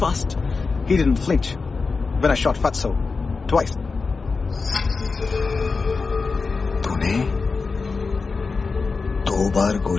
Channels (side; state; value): right; quieter; 4.4 dB